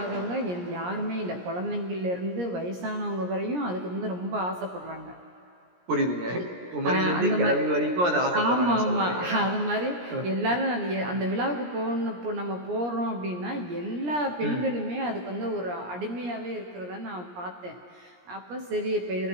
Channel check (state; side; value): late; left; 17 ms